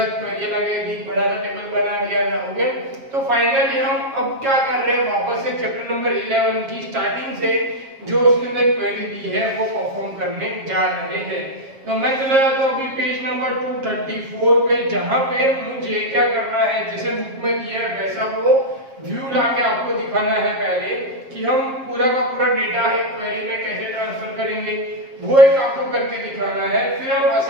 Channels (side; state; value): left; late; 7.4 ms